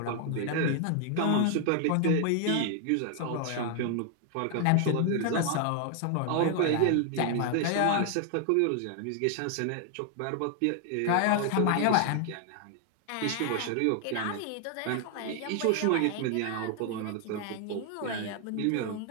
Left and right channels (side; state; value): both; different; correlation 0.00